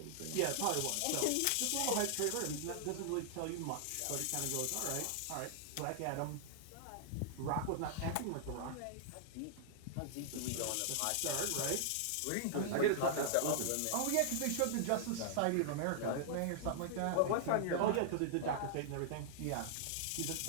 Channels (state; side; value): different; both; correlation -0.01